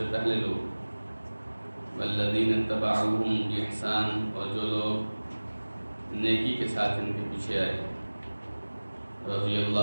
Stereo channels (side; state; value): both; inverted; correlation -1.00